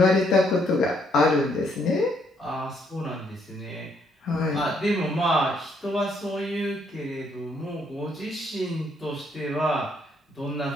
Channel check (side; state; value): both; normal; correlation 0.70